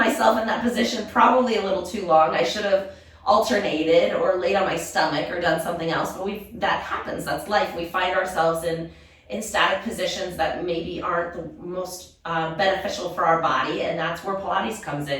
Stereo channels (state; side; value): identical; both; correlation 1.00